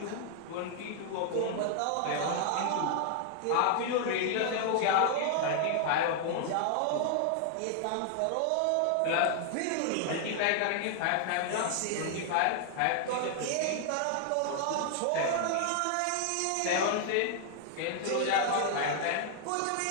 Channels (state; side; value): different; both; correlation 0.00